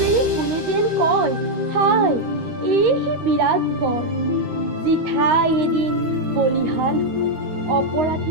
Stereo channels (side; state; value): left; late; 13 ms